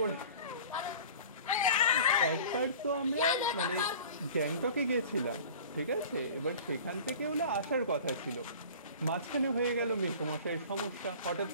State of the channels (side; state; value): both; inverted; correlation -0.42